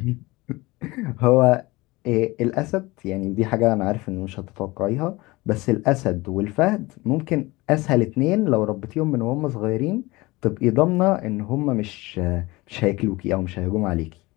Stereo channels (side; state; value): right; quieter; 21.7 dB